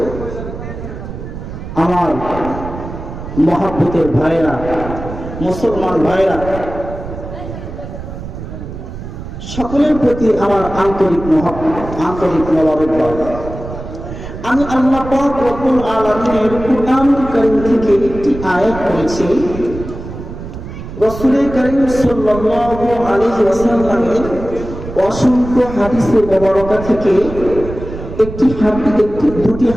আমার মহব্বতের ভাইরা, মুসলমান ভাইরা, সকলের প্রতি আমার আন্তরিক মোবারকবাদ। আমি আল্লাহ পাক রব্বুল আলামিনের কুরআনুল কারীম থেকে একটি আয়াত পড়েছি। রাসূল কারীম সাল্লাল্লাহু আলাইহি ওয়াসাল্লামের অসংখ্য হাদিসে মুবারকা থেকে দুটি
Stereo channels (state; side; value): noise; right; rumble, 10 dB below the sound